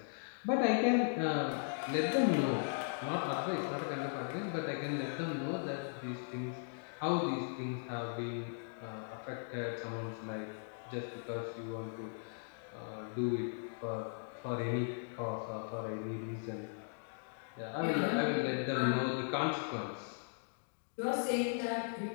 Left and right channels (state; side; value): silent; right; digital silence